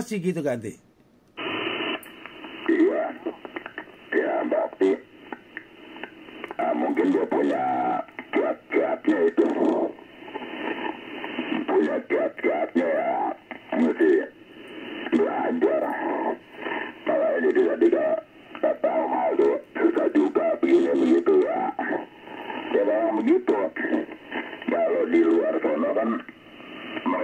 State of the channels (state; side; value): identical; both; correlation 1.00